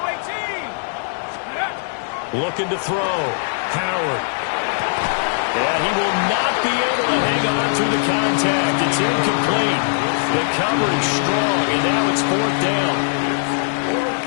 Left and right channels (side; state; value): right; silent; 66 dB below the other